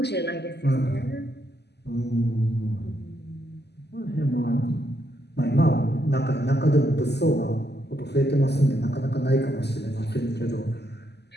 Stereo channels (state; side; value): late; right; 0.49 ms